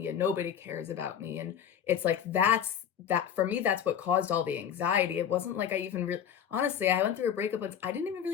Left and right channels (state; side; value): quieter; right; 8.9 dB